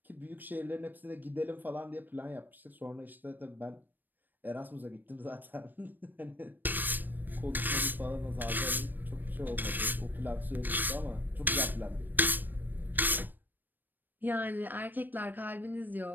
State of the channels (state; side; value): late; left; 0.091 ms